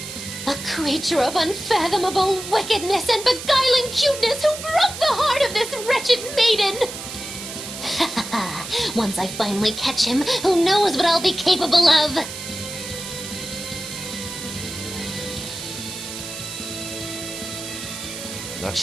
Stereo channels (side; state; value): right; noise; hiss, 9 dB below the sound